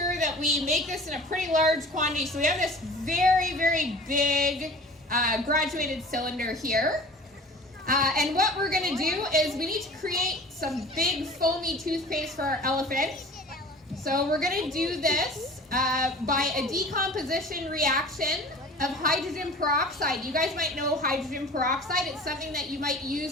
that we make this in a pretty large quantity. So we have this very, very big graduated cylinder here. And what we're going to do is we need to create some big foamy toothpaste for our elephant. So we're going to do this by a decomposition reaction of hydrogen peroxide. You guys might know hydrogen peroxide. It's something that you might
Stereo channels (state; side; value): normal; both; correlation 0.43